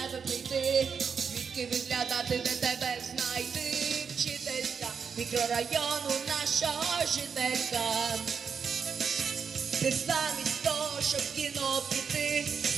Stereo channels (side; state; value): left; quieter; 6.2 dB